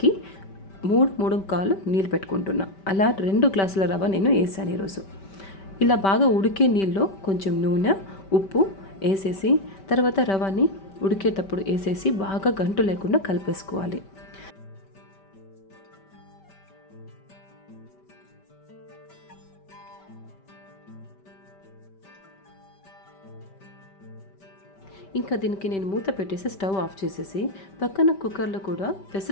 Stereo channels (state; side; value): late; right; 5.2 ms